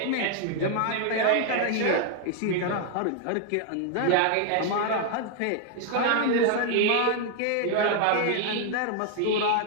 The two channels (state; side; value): different; both; correlation 0.00